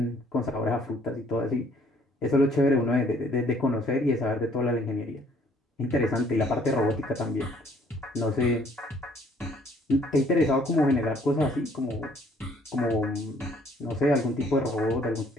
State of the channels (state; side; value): normal; both; correlation 0.62